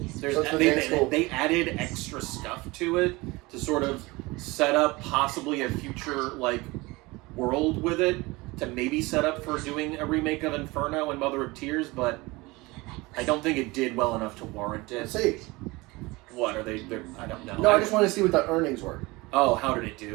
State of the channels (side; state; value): left; quieter; 22.7 dB